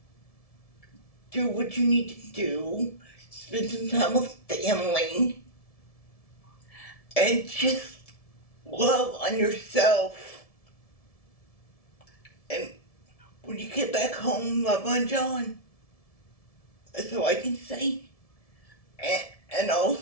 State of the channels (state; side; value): late; right; 1.7 ms